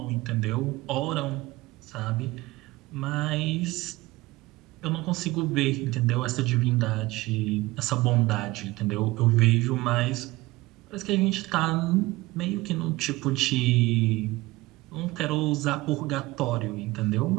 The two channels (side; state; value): left; quieter; 20.1 dB